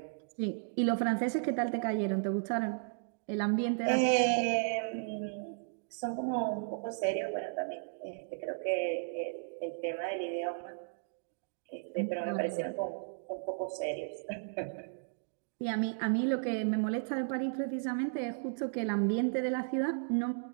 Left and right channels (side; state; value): left; silent; digital silence